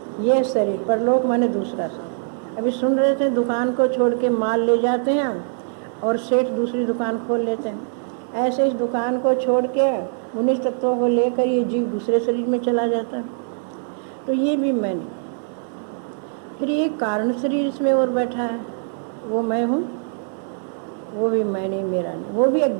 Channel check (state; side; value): silent; left; digital silence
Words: ये शरीर, परलोक माने दूसरा शरीर। अभी सुन रहे थे, दुकान को छोड़ के माल ले जाते हैं और सेठ दूसरी दुकान खोल लेते हैं। ऐसे इस दुकान को छोड़ के 19 तत्वों को लेकर ये जीव दूसरे शरीर में चला जाता है। तो ये भी मैं नहीं। फिर ये कारण शरीर इसमें और बैठा है, वो मैं हूँ, वो भी मैं नहीं, मेरा नहीं। वो भी